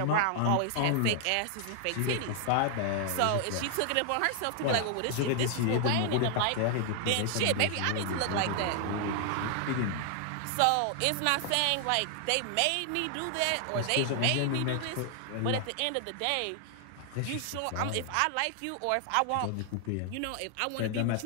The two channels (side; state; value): both; different; correlation 0.00